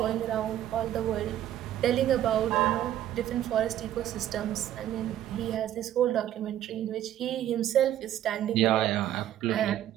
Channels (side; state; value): left; quieter; 11.9 dB